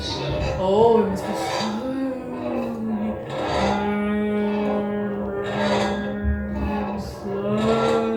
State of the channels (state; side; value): identical; both; correlation 1.00